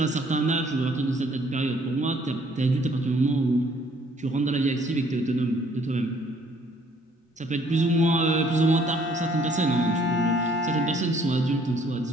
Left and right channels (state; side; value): normal; both; correlation 0.61